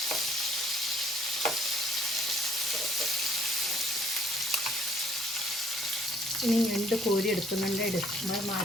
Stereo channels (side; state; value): both; normal; correlation 0.62